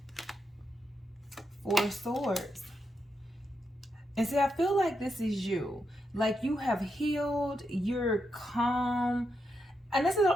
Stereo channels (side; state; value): both; normal; correlation 0.83